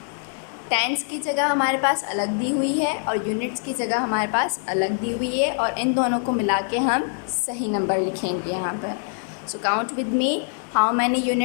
टेंस की जगह हमारे पास अलग दी हुई है और यूनिट्स की जगह हमारे पास अलग दी हुई है और इन दोनों को मिला के हम सही नंबर लिखेंगे यहाँ पर। So count with me, how many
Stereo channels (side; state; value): right; silent; 58 dB below the other